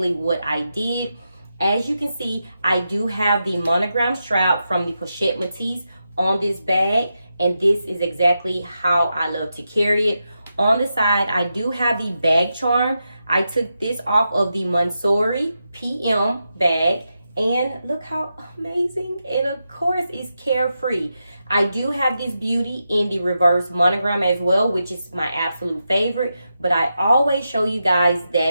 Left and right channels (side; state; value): both; inverted; correlation -0.87